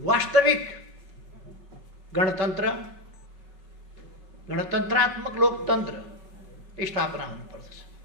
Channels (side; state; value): left; late; 5.4 ms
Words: गणतन्त्र, गणतन्त्रात्मक लोकतन्त्र स्थापना हुनुपर्दछ।